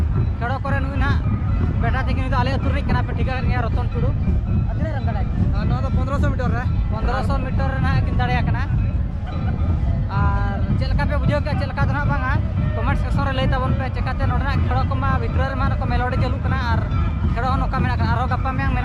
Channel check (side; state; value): both; identical; correlation 1.00